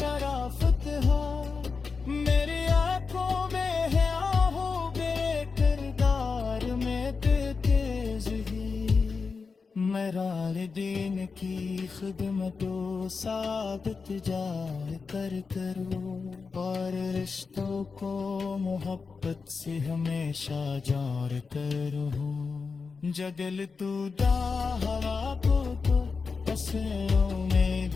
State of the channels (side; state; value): right; quieter; 4.8 dB